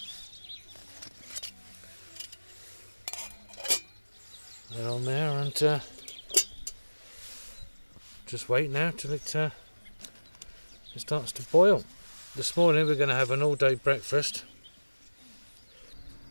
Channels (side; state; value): both; inverted; correlation -1.00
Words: That on there, and just wait now till it starts to boil. This morning we're going to have an all-day breakfast.